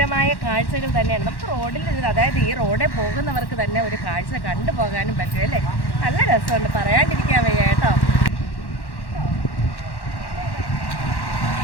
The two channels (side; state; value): right; late; 1.1 ms